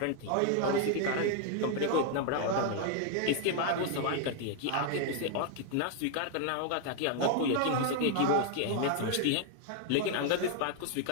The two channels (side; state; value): both; different; correlation 0.00